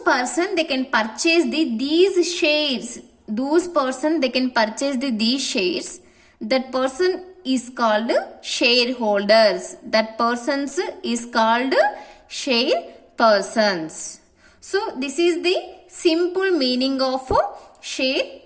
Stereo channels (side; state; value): both; identical; correlation 1.00